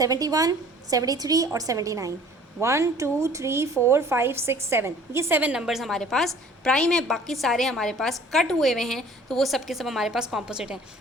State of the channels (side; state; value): both; normal; correlation 0.51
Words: 73 और 79। 1, 2, 3, 4, 5, 6, 7, ये 7 नंबर्स हमारे पास प्राइम है। बाकी सारे हमारे पास कट हुए हुए हैं, तो वो सब के सब हमारे पास कॉम्पोजिट हैं।